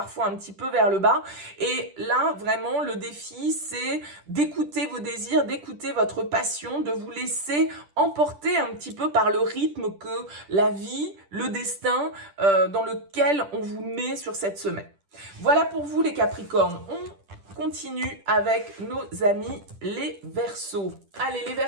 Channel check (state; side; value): late; left; 10 ms